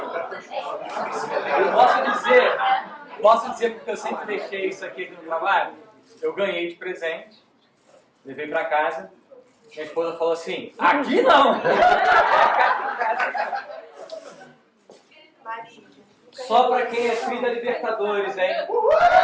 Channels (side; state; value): both; identical; correlation 1.00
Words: Eu posso dizer porque eu sempre deixei isso aqui no trabalho. Eu ganhei de presente, levei para casa. Minha esposa falou assim: aqui não! Só para quem é filho da Libertadores, hein?